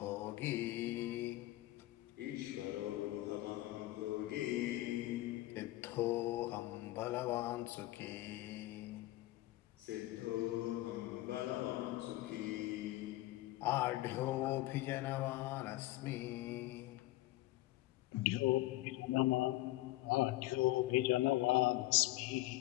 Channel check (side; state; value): right; quieter; 17.5 dB